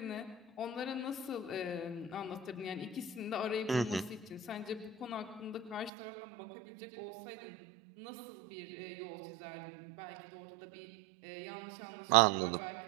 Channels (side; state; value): left; drops out; at 5.9 s